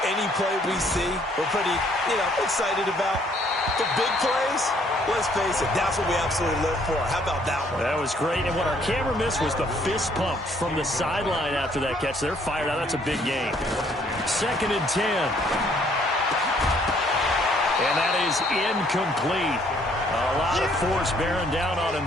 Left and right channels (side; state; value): both; normal; correlation 0.64